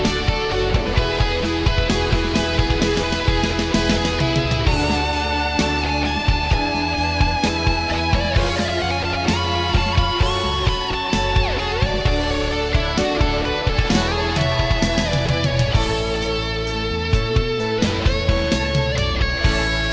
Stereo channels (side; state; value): both; identical; correlation 1.00